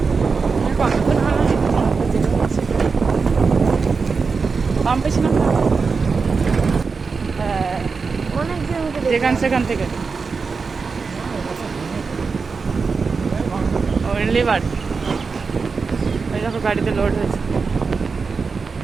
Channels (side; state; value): left; quieter; 4.9 dB